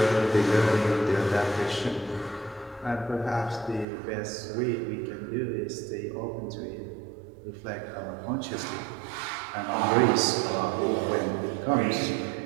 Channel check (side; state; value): left; drops out; at 3.9 s